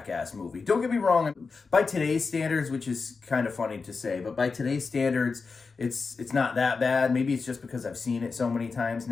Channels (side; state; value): right; quieter; 4.6 dB